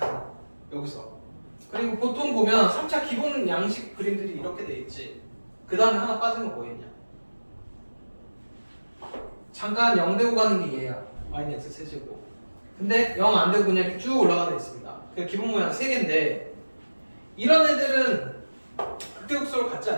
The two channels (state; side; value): inverted; both; correlation -1.00